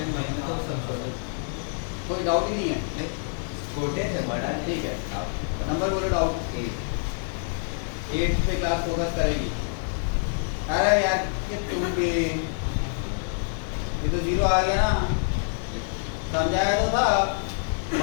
कोई डाउट ही नहीं है। छोटे से बड़ा ठीक है नंबर बोलो। डाउट 8 पे क्लास फोकस करेगी। अरे यार ये तुम भी ये तो 0 आ गया ना। समझाया तो था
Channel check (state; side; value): silent; right; digital silence